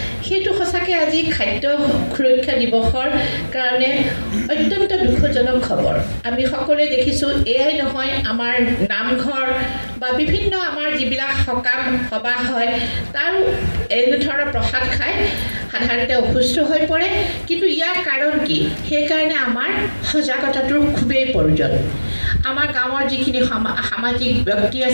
সেইটো সঁচাকৈ আজি খাদ্য সুৰক্ষা দিৱসৰ কাৰণে অত্যন্ত দুখজনক খবৰ আমি সকলোৱে দেখিছোঁ এয়াই নহয় আমাৰ নামঘৰ বা বিভিন্ন আমাৰ যিবিলাক সকাম সভা হয় তাৰ এনেধৰণৰ প্ৰসাদ খাই সাধাৰণতে অসুস্থ হৈ পৰে কিন্তু ইয়াৰ কাৰণ কি সেইকাৰণে আমাৰ সজাগতাটোৰ খুবেই প্ৰয়োজন আমাৰ গাঁৱৰ যিখিনি সামাজিক ব্যক্তি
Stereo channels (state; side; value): inverted; both; correlation -1.00